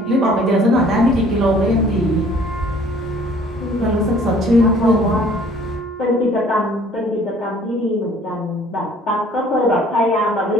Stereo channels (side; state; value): both; normal; correlation 0.55